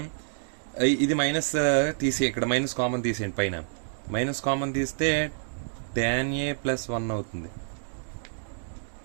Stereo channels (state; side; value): silent; left; digital silence